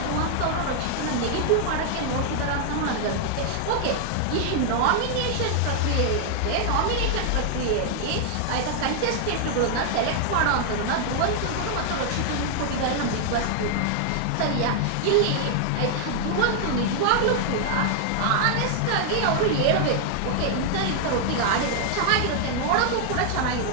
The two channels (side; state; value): both; different; correlation 0.00